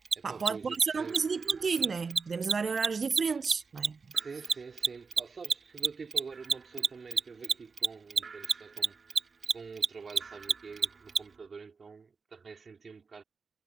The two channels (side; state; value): left; quieter; 4.9 dB